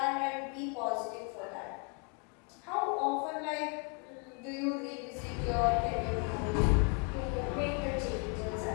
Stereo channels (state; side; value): quieter; right; 36.4 dB